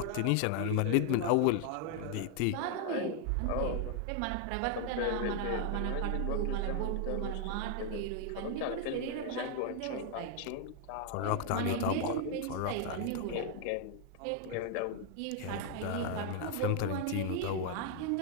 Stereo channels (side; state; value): both; different; correlation 0.00